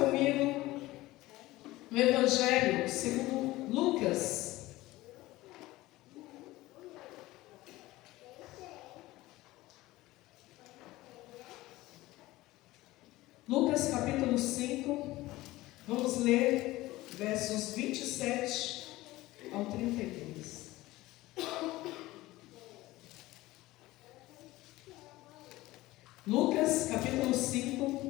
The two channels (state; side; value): quieter; right; 18.2 dB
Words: comigo no Evangelho segundo Lucas. Lucas capítulo 5, vamos ler versos 27 ao 32. Lucas capítulo